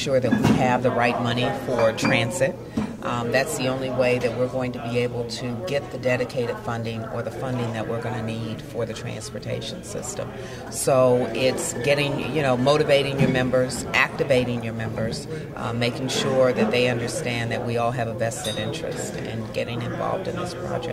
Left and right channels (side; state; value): both; identical; correlation 1.00